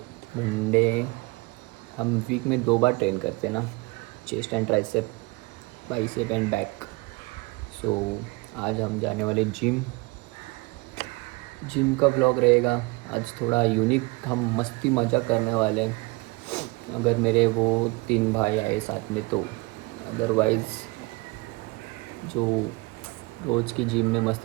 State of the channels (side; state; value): left; quieter; 25.6 dB